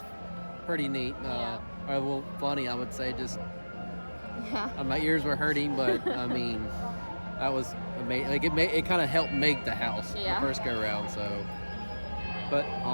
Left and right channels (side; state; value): both; inverted; correlation -1.00